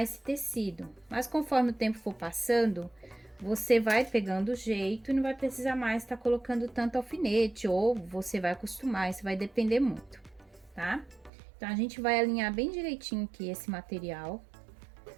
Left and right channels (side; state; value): left; drops out; at 11.3 s